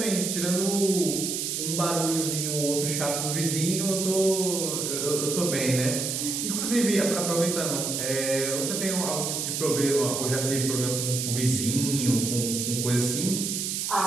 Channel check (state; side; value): noise; right; hiss, 2 dB below the sound